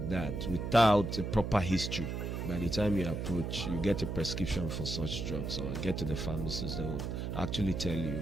that without a proper history, by the time you approach, you get a prescription for such drugs or get to the pharmacist, they will actually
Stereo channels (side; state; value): right; noise; hum, 3 dB below the sound